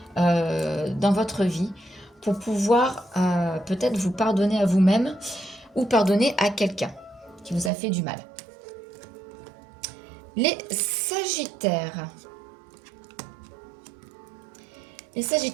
dans votre vie, pour pouvoir peut-être vous pardonner à vous-même ou pardonner à quelqu'un qui vous a fait du mal. Les Sagittaires. Les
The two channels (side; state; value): left; drops out; at 7.7 s